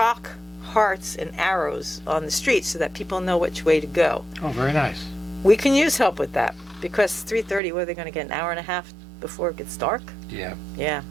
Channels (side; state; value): left; drops out; at 7.6 s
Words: hearts and arrows on the street so that people know which way to go. Oh, very nice. We can use help with that because 3:30, what are they going to get, an hour and a half before it gets dark? Yeah, Yeah.